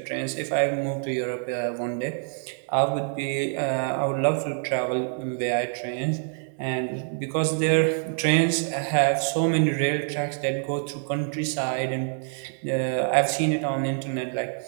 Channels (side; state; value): left; silent; 61 dB below the other